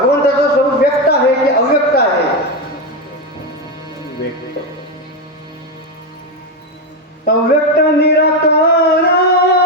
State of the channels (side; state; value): both; normal; correlation 0.10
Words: स्वरूप व्यक्त आहे की अव्यक्त आहे? व्यक्त. अव्यक्त निराकार